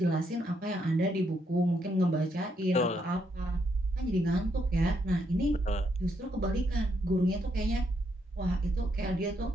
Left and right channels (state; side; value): normal; both; correlation 0.76